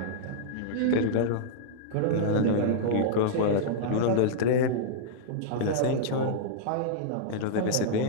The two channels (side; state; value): both; different; correlation -0.02